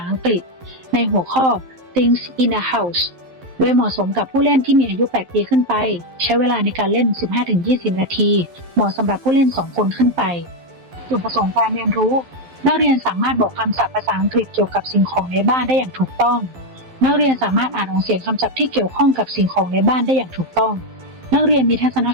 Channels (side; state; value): left; late; 11 ms